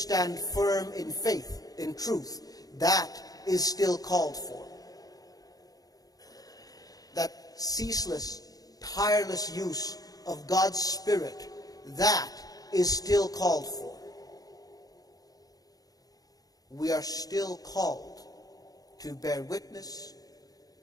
firm in faith, in truth, that is still called for. That ceaseless, tireless use of God's Spirit, that is still called for. We are still called to bear witness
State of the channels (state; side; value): late; right; 0.18 ms